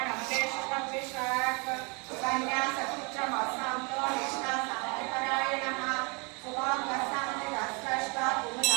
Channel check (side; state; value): left; quieter; 31.7 dB